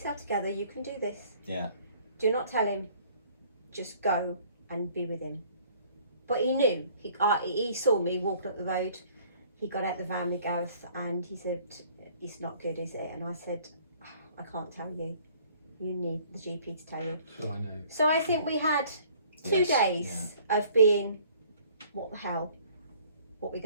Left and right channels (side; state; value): both; inverted; correlation -0.56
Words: together, you can do this. Yeah. Do not tell him, just go and be with him. But he knew. He saw me walking up the road. He got out the van with Gareth and he said, it's not good, is it? And I said, I can't tell you. You need the GP to tell you. So I know. So I think we had 2 Yes, days of being, what the hell, what we're